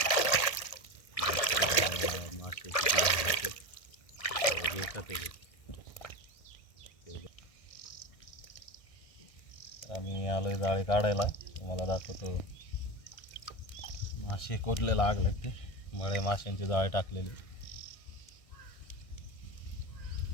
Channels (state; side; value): late; right; 1.6 ms